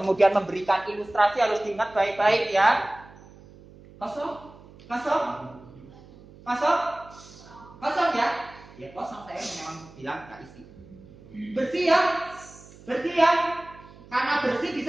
memberikan ilustrasi harus diingat baik-baik ya. Kosong, kosong, kosong, kosong ya. Ya kosong, saya memang bilang nggak isi. Bersih ya, bersih ya. Karena bersih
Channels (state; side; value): noise; right; hum, 22 dB below the sound